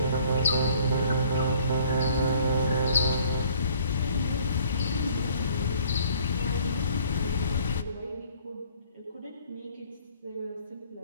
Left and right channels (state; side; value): inverted; both; correlation -0.57